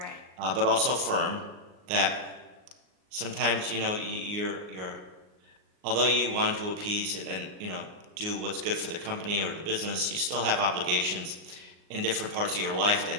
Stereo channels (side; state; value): left; late; 38 ms